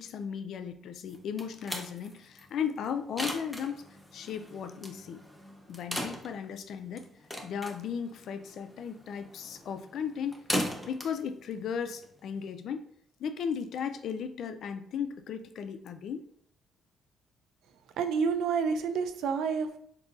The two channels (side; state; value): both; normal; correlation 0.60